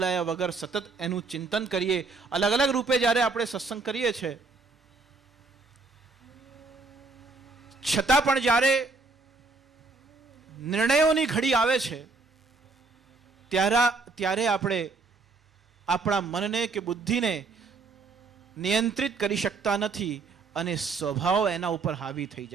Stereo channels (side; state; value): left; quieter; 4.0 dB